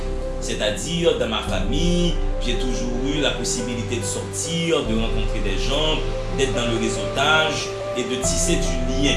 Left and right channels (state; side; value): identical; both; correlation 1.00